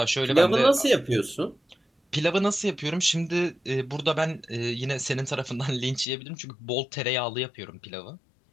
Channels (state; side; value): drops out; right; at 6.1 s